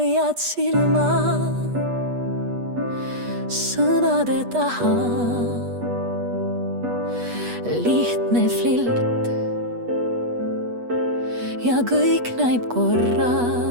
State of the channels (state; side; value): late; left; 8.2 ms